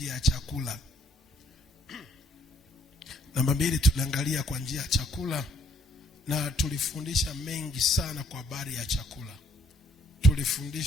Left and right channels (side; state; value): both; normal; correlation 0.66